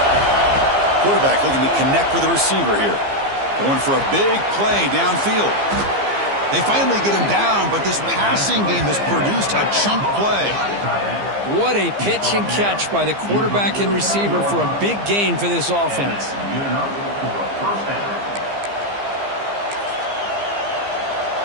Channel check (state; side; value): late; left; 15 ms